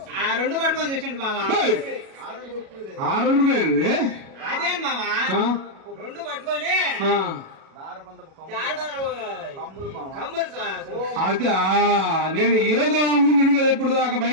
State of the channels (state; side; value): late; left; 37 ms